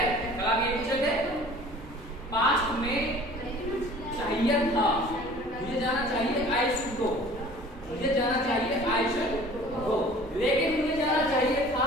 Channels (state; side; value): normal; both; correlation 0.47